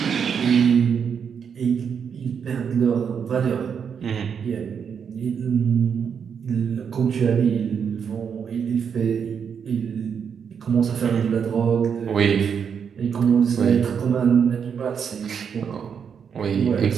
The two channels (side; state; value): left; quieter; 7.1 dB